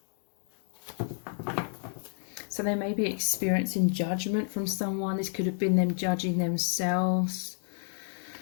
So they may be experiencing judgment from someone. This could have been them judging themselves.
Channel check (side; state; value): right; silent; digital silence